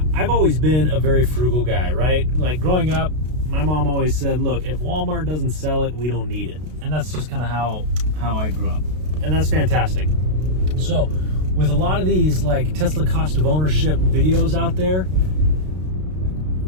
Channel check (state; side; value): late; left; 32 ms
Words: I've always been a very frugal guy, right? Like growing up, my mom always said, look, if Walmart doesn't sell it, we don't need it. And that's just kind of how I grew up. And that's fantastic. So with a lot of these Tesla cost of ownership videos out there,